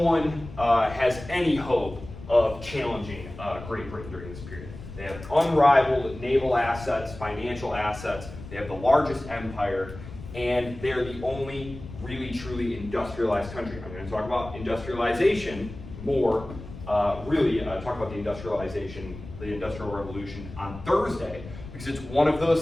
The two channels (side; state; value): left; noise; rumble, 13 dB below the sound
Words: has any hope of challenging Great Britain during this period. They have unrivaled naval assets, financial assets, they have the largest empire, and they're the only really truly industrialized country. I'm going to talk about industrialization more, talk about the Industrial Revolution on Thursday, because it's one of those